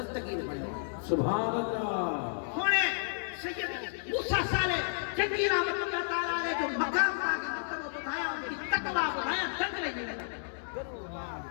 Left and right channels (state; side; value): silent; right; digital silence